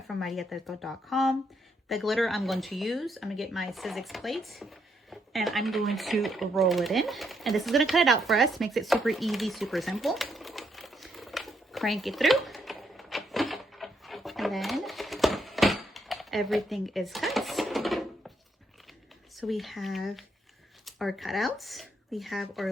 from mariatreto.com. The glitter I'm going to use, I'm going to get my Sizzix plate and I'm going to roll it in. And this is going to cut it out for us. Makes it super easy, super simple. Crank it through. And then everything is cut. So we have our cutouts, we have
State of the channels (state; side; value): normal; both; correlation 0.76